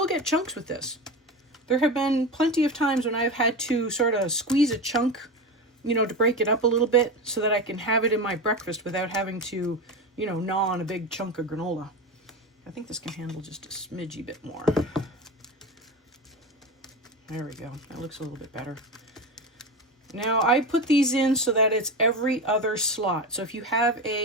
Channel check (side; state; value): both; normal; correlation 0.23